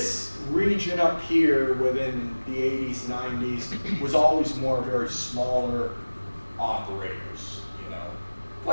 region up here within the 80s, 90s was always more very smaller operators, you know.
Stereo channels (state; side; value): inverted; both; correlation -1.00